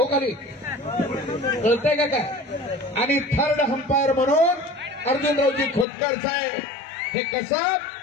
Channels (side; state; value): right; drops out; at 5.9 s